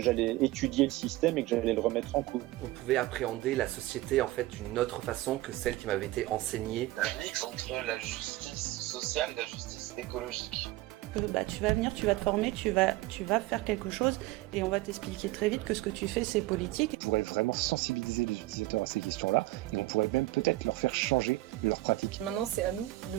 étudier le système et que j'allais le remettre en cause. On pouvait appréhender la société en fait d'une autre façon que celle qui m'avait été enseignée. Un mix entre la justice sociale et la justice écologique. Tu vas venir, tu vas te former, tu vas faire quelque chose et on va t'expliquer très vite que ce que tu fais c'est politique. On pourrait vraiment sensibiliser les utilisateurs à ces questions-là et on pourrait même peut-être leur faire changer leur pratique. Maintenant c'est à nous de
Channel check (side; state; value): left; quieter; 18.0 dB